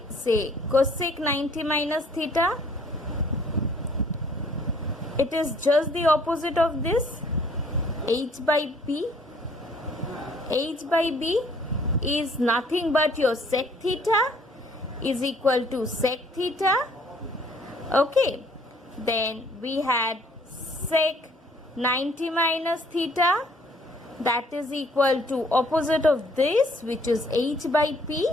say cosec 90 minus theta, it is just the opposite of this, h by p. H by b is nothing but your sec theta is equal to sec theta. Okay, then we had sec 90 minus theta, that is equal to opposite of this, which is h by p,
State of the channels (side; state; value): both; normal; correlation 0.60